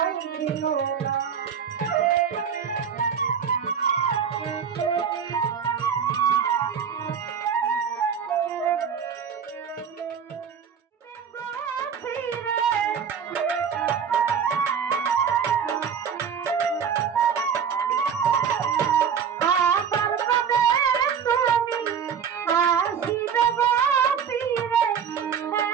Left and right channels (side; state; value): left; quieter; 7.3 dB